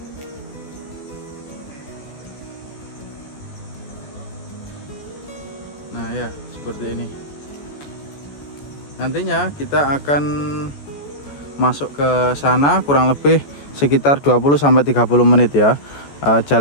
Nah ya, seperti ini. Nantinya kita akan masuk ke sana kurang lebih sekitar 20-30 menit ya.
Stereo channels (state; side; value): late; right; 14 ms